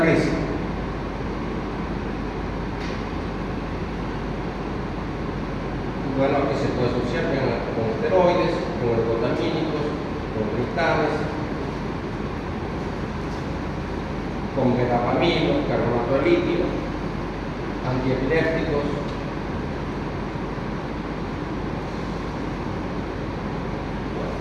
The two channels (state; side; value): identical; both; correlation 1.00